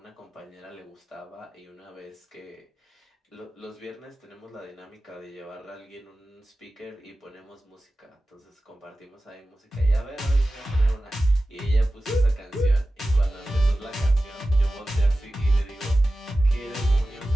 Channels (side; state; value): both; normal; correlation 0.95